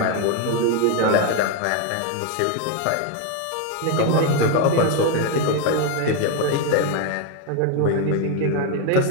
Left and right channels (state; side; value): different; both; correlation 0.02